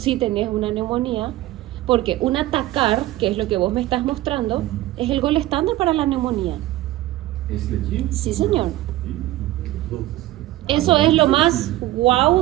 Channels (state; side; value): quieter; left; 16.0 dB